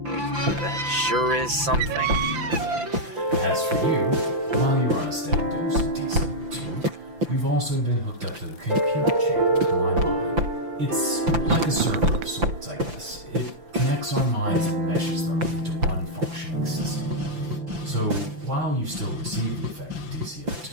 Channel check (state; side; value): late; left; 5.9 ms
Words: that sure is something. As for you, while you're on a steady dose of DCO2, you've also been hooked up to the computer chamber of my mind. It's like a server of sorts, I guess. It connects our minds and meshes them into one functioning system. So, while you still receive the effect of DCO2,